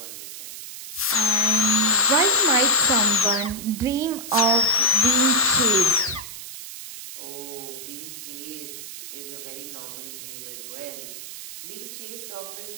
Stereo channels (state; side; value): noise; right; hiss, 11 dB below the sound